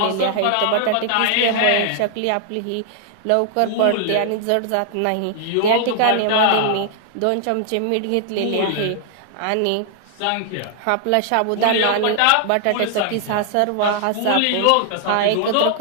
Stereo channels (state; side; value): different; both; correlation 0.00